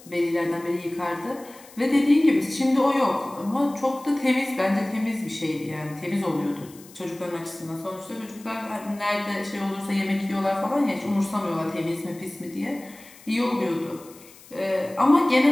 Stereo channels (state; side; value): noise; left; hiss, 22 dB below the sound